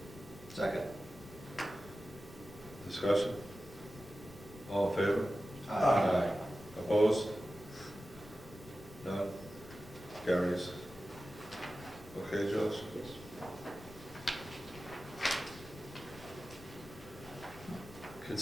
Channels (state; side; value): noise; left; rumble, 18 dB below the sound